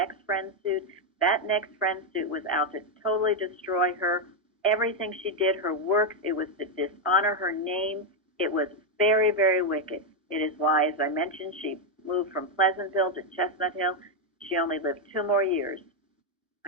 friend suit. That next friend suit was out to totally destroy her. Everything she did, her works, it was to dishonor her name. It was very, very wicked. It is why, as I mentioned, she moved from Pleasantville to Chestnut Hill. She only lived 2 more years,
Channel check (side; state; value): both; normal; correlation 0.03